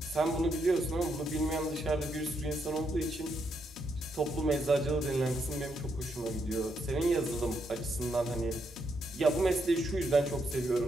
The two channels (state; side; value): normal; both; correlation 0.78